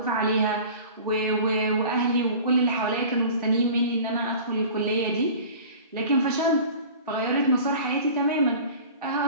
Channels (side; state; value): both; inverted; correlation -0.41